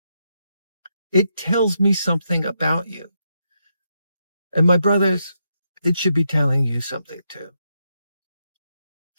It tells me something about you. And my brothers, it should be telling you something too.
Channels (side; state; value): both; inverted; correlation -0.81